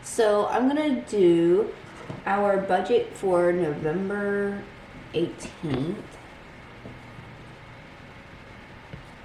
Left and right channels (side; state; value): both; identical; correlation 1.00